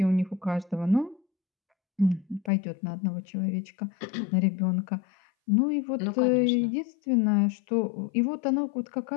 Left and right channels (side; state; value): right; drops out; at 2.5 s